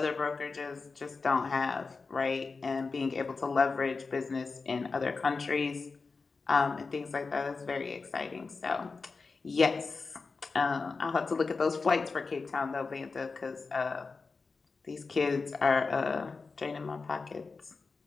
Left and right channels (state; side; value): quieter; right; 4.3 dB